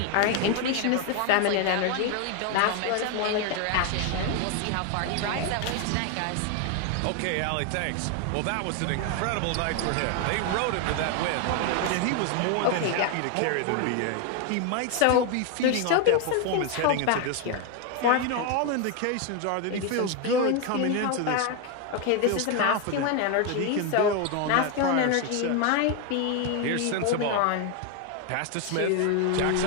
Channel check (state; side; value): different; both; correlation 0.01